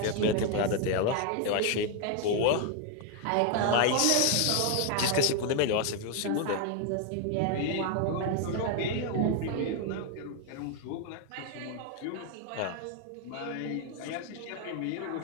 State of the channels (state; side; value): different; both; correlation 0.01